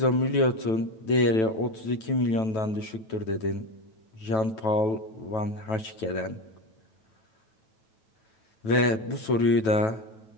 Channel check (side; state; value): right; late; 9.1 ms